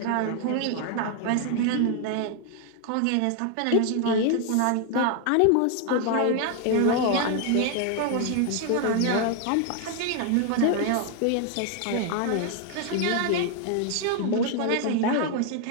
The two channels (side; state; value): both; different; correlation 0.00